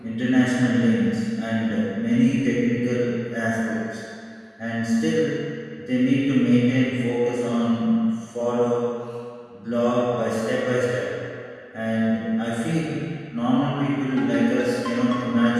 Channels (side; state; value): both; identical; correlation 1.00